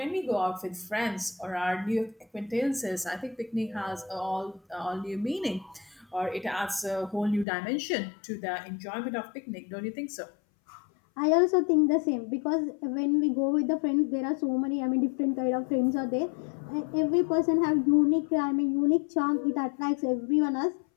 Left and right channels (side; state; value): right; drops out; at 7.5 s